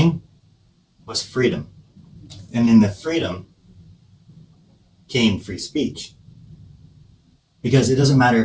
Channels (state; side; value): identical; both; correlation 1.00